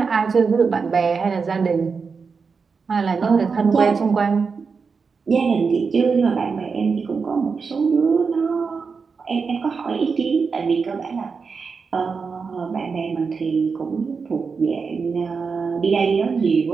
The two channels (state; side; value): quieter; left; 5.2 dB